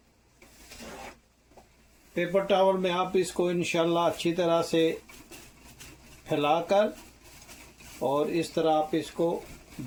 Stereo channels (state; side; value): identical; both; correlation 1.00